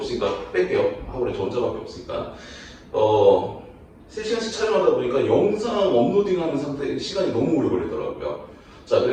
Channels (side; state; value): both; identical; correlation 1.00